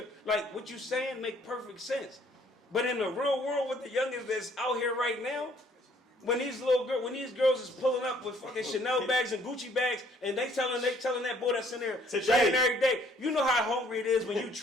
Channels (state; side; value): normal; both; correlation 0.62